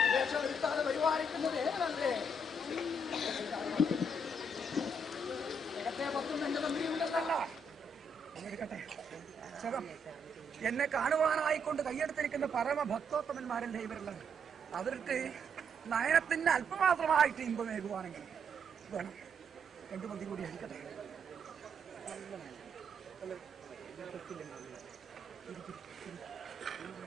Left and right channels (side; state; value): both; normal; correlation 0.74